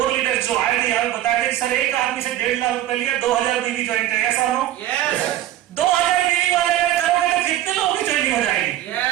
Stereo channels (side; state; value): left; quieter; 13.2 dB